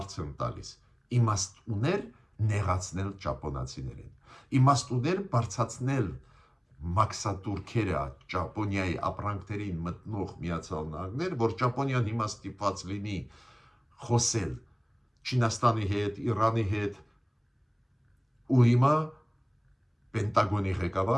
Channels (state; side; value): identical; both; correlation 1.00